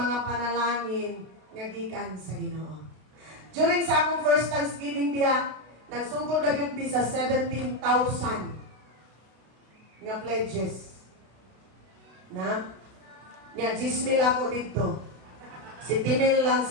panalangin nga gikan sa Ginoo. During sa akong first Thanksgiving diha, nagsugod ra gyud mi sa 17,000 nga pledges. Na? Nga 10,000 ako dito. 7,000 lang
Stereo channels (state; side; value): late; left; 32 ms